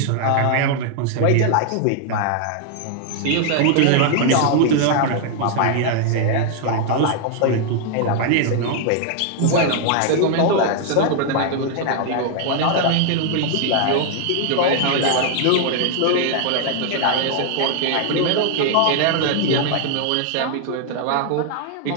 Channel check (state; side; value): different; both; correlation 0.00